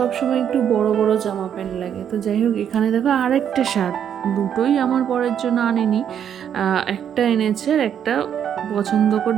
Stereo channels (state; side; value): quieter; left; 8.9 dB